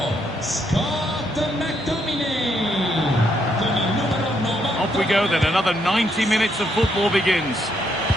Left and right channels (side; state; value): both; normal; correlation 0.75